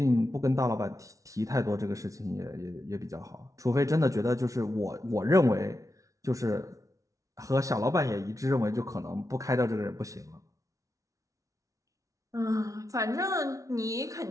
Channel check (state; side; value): late; left; 0.16 ms